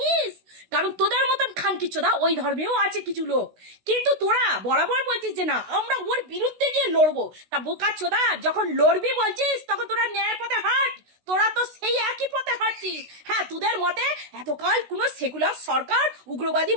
কারণ তোদের মতন খানকিচোদা ওই ধর্মেও আছে কিছু লোক, কিন্তু তোরা বরাবর বলছিস যে না আমরা ওর বিরুদ্ধে গিয়ে লড়বো। তা বোকা চোদা, যখন লড়বি বলছিস তখন তোরা ন্যায়ের পথে হাঁট। তোরা তো সেই একই পথে হাঁটছিস। হ্যাঁ, তোদের মতে এতকাল কোনো সেকুলার সরকার উগ্রবাদী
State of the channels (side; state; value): left; late; 16 ms